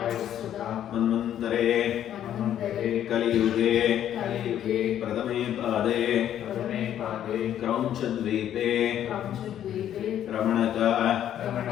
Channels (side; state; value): right; quieter; 10.7 dB